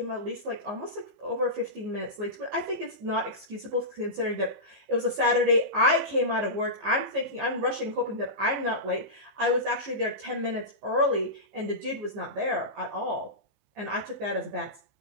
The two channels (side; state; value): left; late; 14 ms